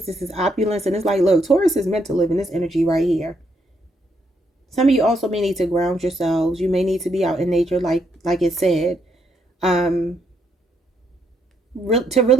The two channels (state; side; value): normal; both; correlation 0.75